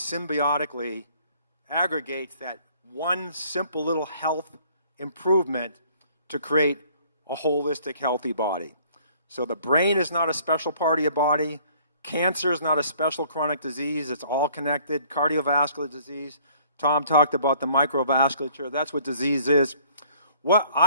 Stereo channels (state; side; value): inverted; both; correlation -0.58